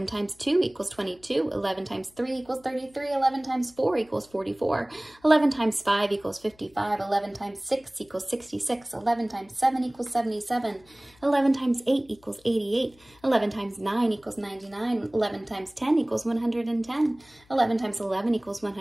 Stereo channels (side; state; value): left; noise; hum, 30 dB below the sound